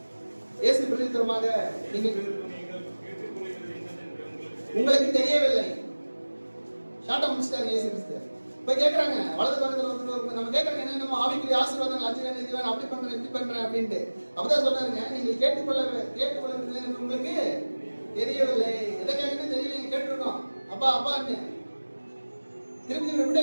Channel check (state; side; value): inverted; both; correlation -1.00